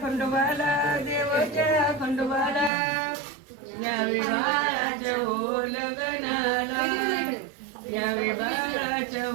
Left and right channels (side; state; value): left; drops out; at 2.7 s